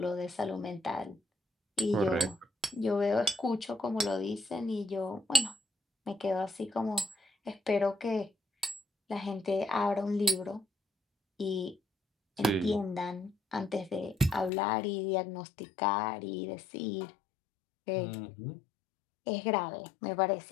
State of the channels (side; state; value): right; drops out; at 14.5 s